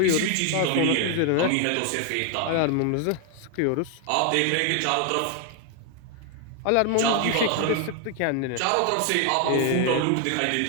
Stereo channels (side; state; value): both; different; correlation 0.00